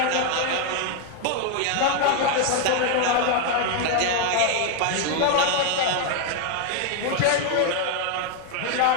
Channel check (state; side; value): different; both; correlation 0.01